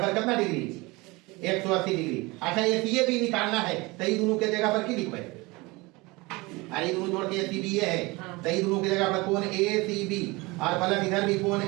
कितना डिग्री, 180 डिग्री। अच्छा ये भी निकालना है, तो ये दोनों के जगह पर की लिखो, अरे दोनों जोड़ के ए सी बी है, तो ये दोनों की जगह पर कोण ए सी बी और प्लस इधर भी कोण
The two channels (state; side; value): quieter; left; 23.7 dB